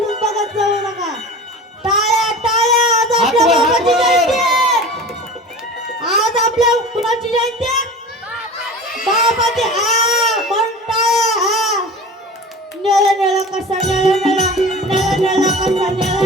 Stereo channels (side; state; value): both; normal; correlation 0.36